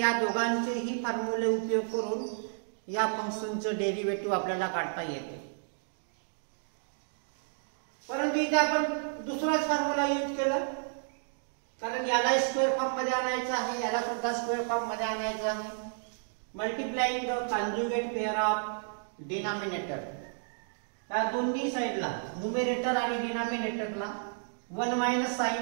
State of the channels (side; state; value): left; silent; digital silence